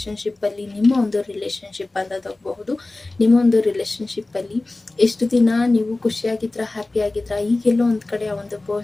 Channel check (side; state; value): right; quieter; 3.0 dB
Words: ನಿಮ್ಮ ಒಂದು ರಿಲೇಷನ್ಶಿಪ್ ಅಂತ ತಗೋಬಹುದು. ನಿಮ್ಮ ಒಂದು ರಿಲೇಷನ್ಶಿಪ್ಪಲ್ಲಿ ಎಷ್ಟು ದಿನ ನೀವು ಖುಷಿಯಾಗಿದ್ರ, ಹ್ಯಾಪಿ ಆಗಿದ್ರ, ಈಗೆಲ್ಲೋ ಒಂದು ಕಡೆ ಆ ಒಂದು